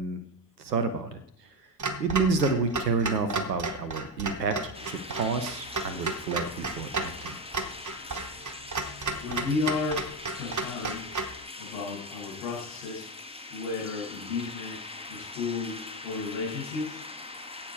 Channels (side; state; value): both; normal; correlation 0.12